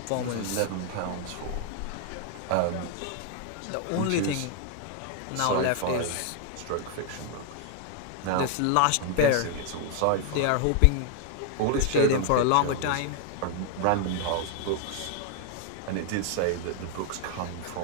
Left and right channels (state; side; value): different; both; correlation 0.00